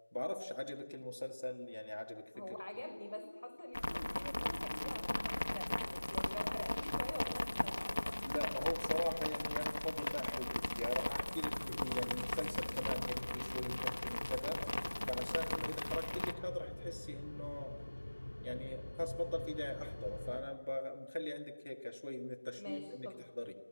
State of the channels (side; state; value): both; inverted; correlation -1.00